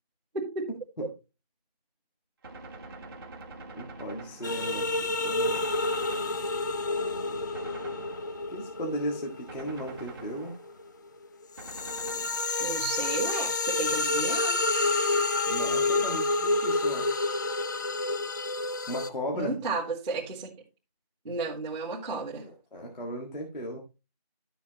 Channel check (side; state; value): both; inverted; correlation -0.32